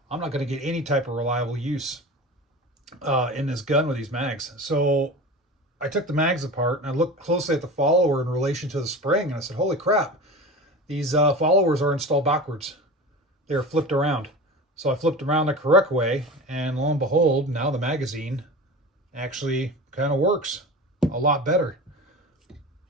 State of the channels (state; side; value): normal; both; correlation 0.33